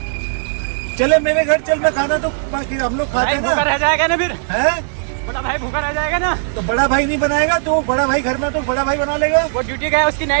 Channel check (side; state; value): left; silent; digital silence